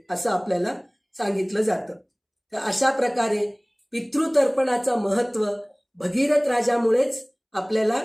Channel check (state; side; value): identical; both; correlation 1.00